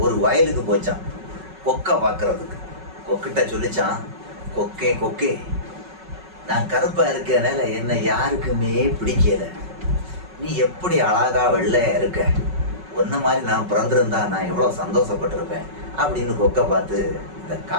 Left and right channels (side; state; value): left; late; 5.4 ms